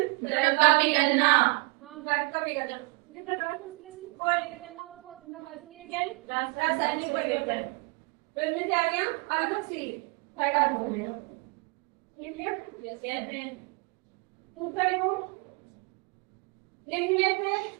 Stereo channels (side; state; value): left; quieter; 30.1 dB